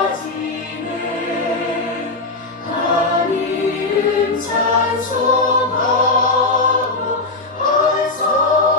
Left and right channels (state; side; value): quieter; right; 3.2 dB